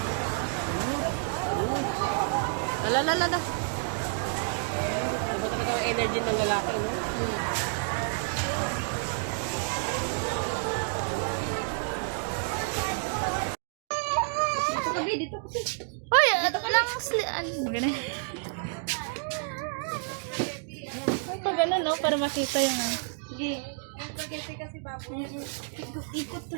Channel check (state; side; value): silent; left; 58 dB below the other